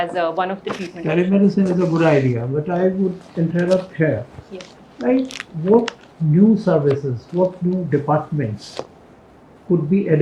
one of the treatment options. Telemedicine is a good idea, but I would interrupt here. Yes. Like, what new services, what new departments could be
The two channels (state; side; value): identical; both; correlation 1.00